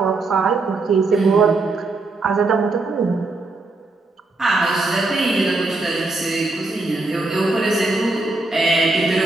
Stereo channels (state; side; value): quieter; left; 3.3 dB